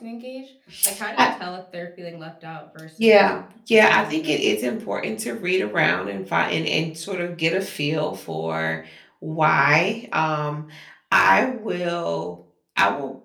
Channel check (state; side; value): identical; both; correlation 1.00